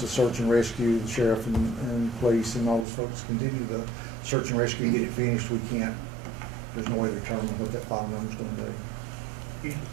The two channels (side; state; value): left; drops out; at 2.9 s